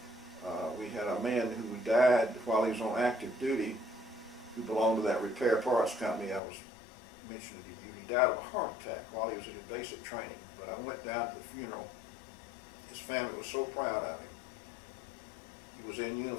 We had a man who died while he was on active duty, who belonged to that repair parts company I was mentioning to you. He died of a heart attack while he was in his basic training. But I went down to the funeral. His family was so proud of him. He was in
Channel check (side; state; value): right; drops out; at 6.4 s